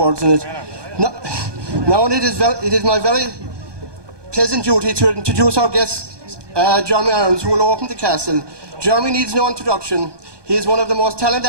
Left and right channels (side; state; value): left; late; 1.2 ms